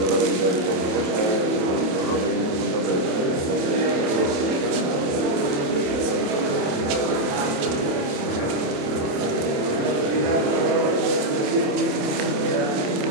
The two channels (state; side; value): late; left; 27 ms